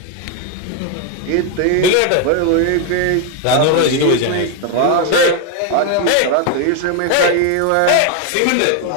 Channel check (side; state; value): both; different; correlation 0.01